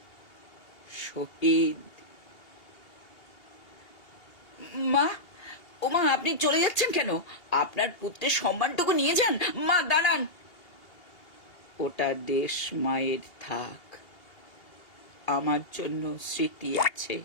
শহীদ। মা, ও মা, আপনি চলে যাচ্ছেন কেন? আপনার পুত্রের সম্মানটুকু নিয়ে যান। মা দাঁড়ান। ওটা দেশ মায়ের থাক, আমার জন্য স্মৃতি আছে,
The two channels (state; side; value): late; right; 2.8 ms